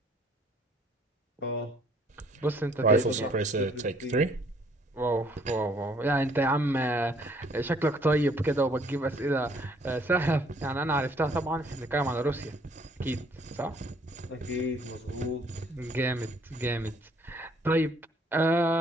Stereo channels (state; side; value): normal; both; correlation 0.63